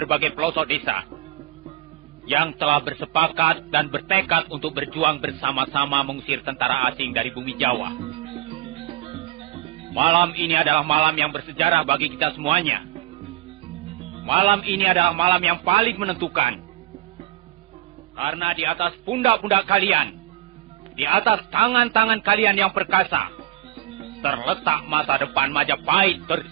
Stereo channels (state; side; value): quieter; left; 17.1 dB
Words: pelosok desa, yang telah bersepakat dan bertekad untuk berjuang bersama-sama mengusir tentara asing dari bumi Jawa. Malam ini adalah malam yang bersejarah bagi kita semuanya. Malam ini adalah malam yang paling menentukan. Karena di atas pundak-pundak kalian, di atas tangan-tangan kalian yang perkasa, terletak masa depan Majapahit